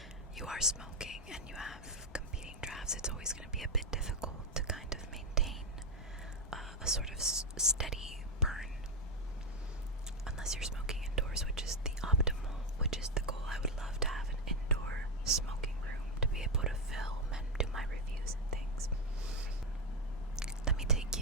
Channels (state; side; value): normal; both; correlation 0.07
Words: you are smoking and you have competing drafts, it's always going to be a bit difficult to kind of maintain a sort of steady burn, unless you're smoking indoors, which is the optimal, which is the goal. I would love to have an indoor smoking room to be able to film and do my reviews and things. Let me take